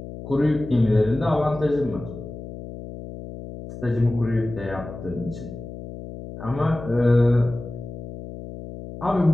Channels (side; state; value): left; noise; hum, 12 dB below the sound